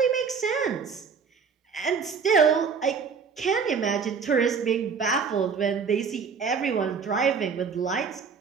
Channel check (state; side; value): quieter; left; 5.8 dB